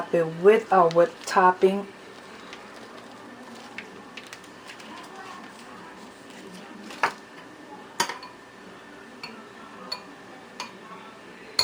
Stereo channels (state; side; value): identical; both; correlation 1.00